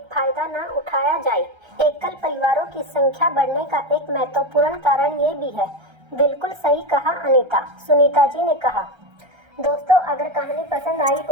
फायदा न उठाया जाए। एकल परिवारों की संख्या बढ़ने का एक महत्वपूर्ण कारण ये भी है। बिल्कुल सही कहा अनीता, सुनीता जी ने कहा। दोस्तों, अगर कहानी पसंद आई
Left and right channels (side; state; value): left; late; 1.3 ms